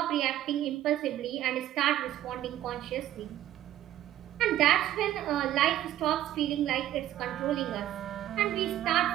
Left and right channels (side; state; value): left; quieter; 12.9 dB